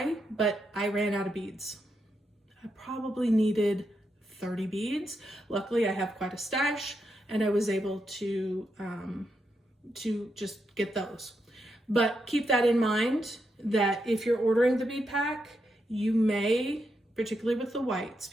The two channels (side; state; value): both; normal; correlation 0.83